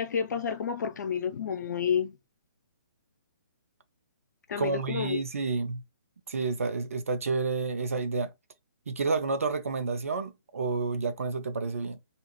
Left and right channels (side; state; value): both; inverted; correlation -0.60